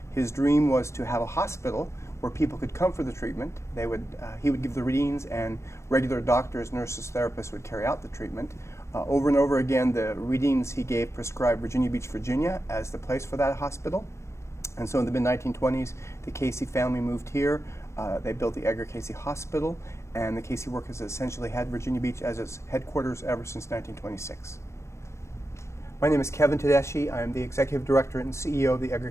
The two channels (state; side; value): late; right; 0.13 ms